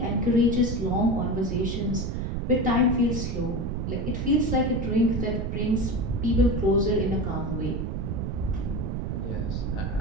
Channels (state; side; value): noise; right; rumble, 2 dB below the sound